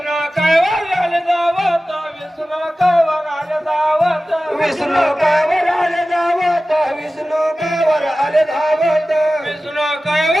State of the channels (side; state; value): both; normal; correlation 0.96